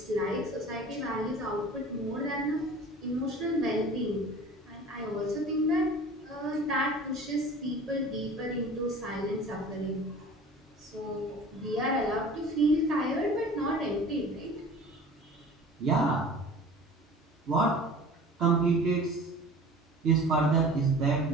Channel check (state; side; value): normal; both; correlation 0.42